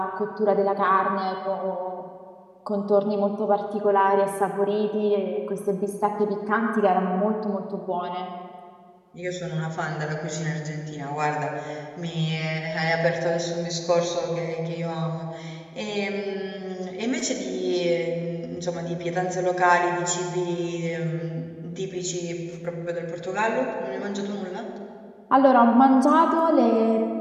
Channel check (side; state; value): both; identical; correlation 1.00